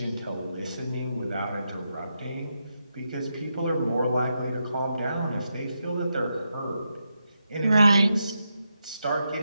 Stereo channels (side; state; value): both; inverted; correlation -0.85